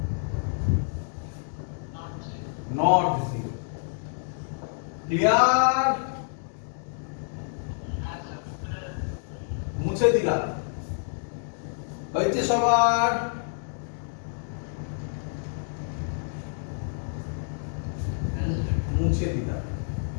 not 0। Clear? মুছে দিলাম, হয়েছে সবার? মুছে দিলাম।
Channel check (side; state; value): right; silent; digital silence